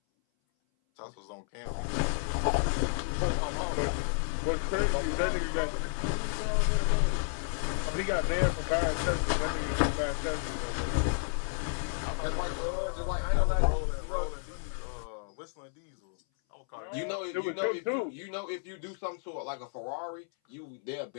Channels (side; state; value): right; silent; 57 dB below the other